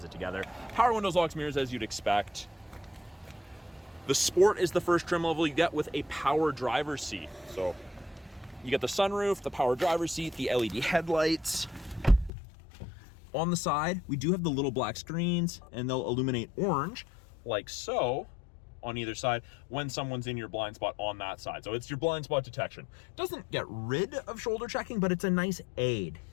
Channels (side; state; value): right; drops out; at 12.3 s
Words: it together. Power windows, locks, mirrors, as you'd expect. The Sport is the first trim level you get with a power driver's seat. So you get the sunroof, the power driver's seat, the LED headlights. On the side, we do have the little black screens, and they'll illuminate orange, like so, on either side when someone's in your blind spot on that side. So it's your blind spot detection. Doesn't get rid of shoulder checking, but it's a nice aid.